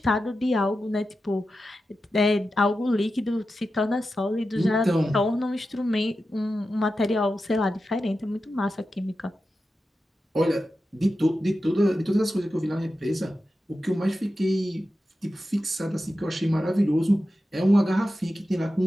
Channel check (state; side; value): normal; both; correlation 0.91